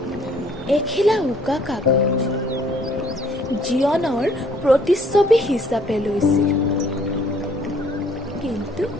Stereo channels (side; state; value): both; normal; correlation 0.61